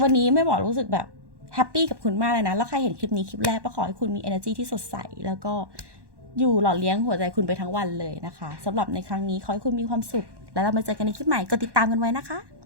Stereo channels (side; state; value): left; late; 1.1 ms